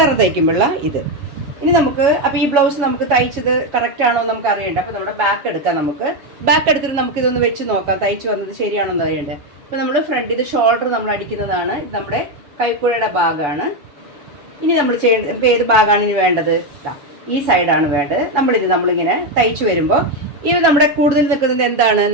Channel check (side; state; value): left; late; 7.1 ms